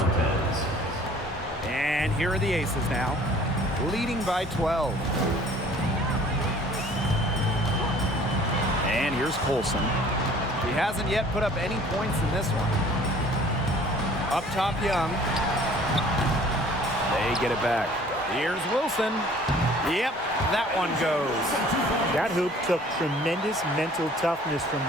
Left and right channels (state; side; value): normal; both; correlation 0.52